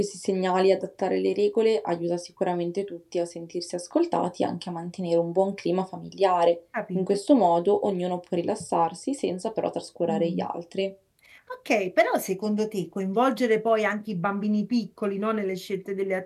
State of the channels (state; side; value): identical; both; correlation 1.00